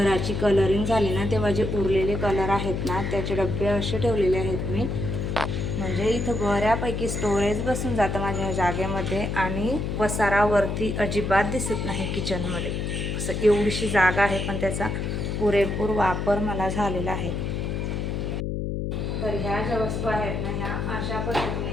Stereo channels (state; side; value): noise; left; hum, 2 dB below the sound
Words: कलरिंग झाली ना तेव्हा जे उरलेले कलर आहेत ना त्याचे डबे असे ठेवलेले आहेत मी, म्हणजे इथं बऱ्यापैकी स्टोरेज बसून जातं माझ्या जागेमध्ये. आणि पसारावरती अजिबात दिसत नाही किचनमध्ये. असं एवढीशी जागा आहे पण त्याचा पुरेपूर वापर मला झालेला आहे. तर ह्या ज्या वस्तू आहेत ना ह्या अशा